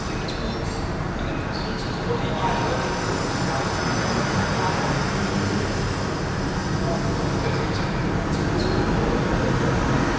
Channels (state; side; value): identical; both; correlation 1.00